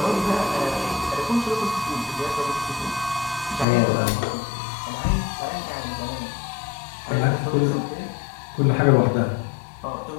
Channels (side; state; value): right; drops out; at 3.7 s